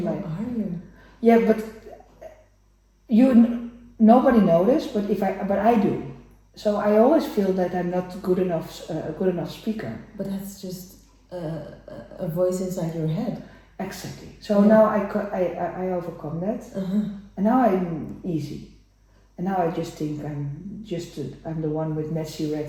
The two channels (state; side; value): identical; both; correlation 1.00